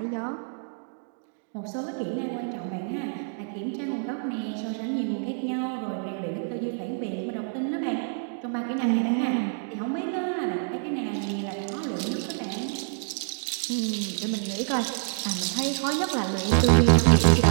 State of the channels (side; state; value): left; silent; digital silence